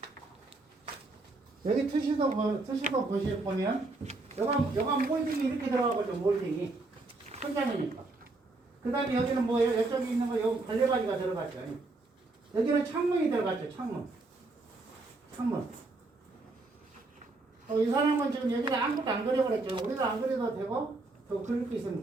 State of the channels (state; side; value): quieter; left; 3.3 dB